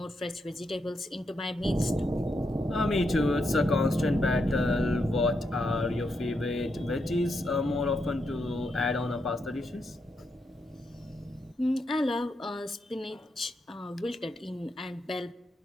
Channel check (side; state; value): both; normal; correlation 0.82